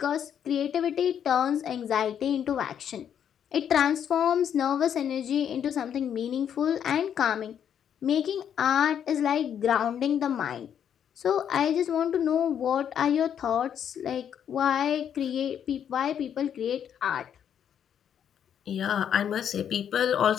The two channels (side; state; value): right; quieter; 8.9 dB